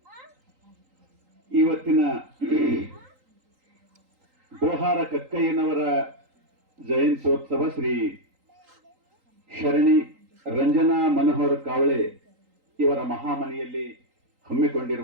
ಇವತ್ತಿನ ಡೋಹಾರ ಕಕ್ಕಯ್ಯನವರ ಜಯಂತ್ಯೋತ್ಸವ ಶ್ರೀ ಶರಣಿ ರಂಜನಾ ಮನೋಹರ್ ಕಾವಳೆ ಇವರ ಮಹಾಮನೆಯಲ್ಲಿ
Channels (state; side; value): late; left; 3.8 ms